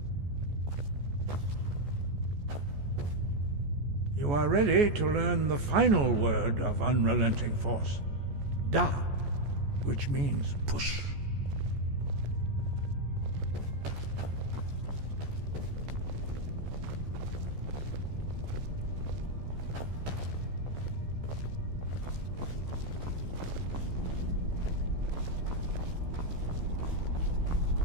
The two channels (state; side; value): late; left; 14 ms